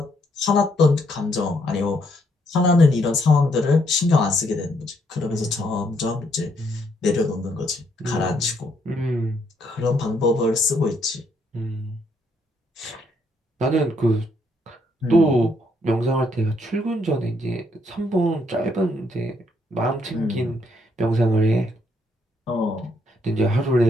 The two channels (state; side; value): normal; both; correlation 0.72